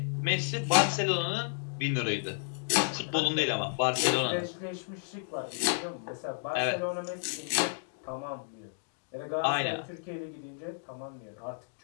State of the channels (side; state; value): right; silent; digital silence